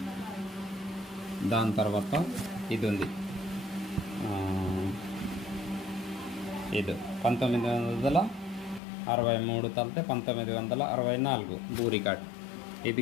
దాని ఇది ఉంది ఇది 1963 తలితే 1964 భూ రికార్డ్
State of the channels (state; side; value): drops out; right; at 8.8 s